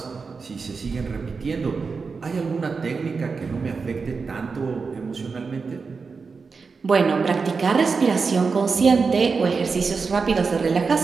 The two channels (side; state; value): left; quieter; 4.9 dB